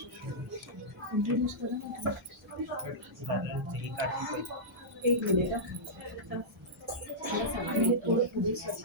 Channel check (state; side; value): normal; both; correlation -0.12